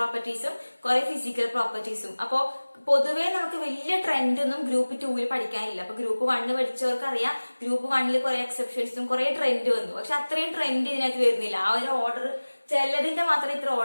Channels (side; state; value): both; inverted; correlation -1.00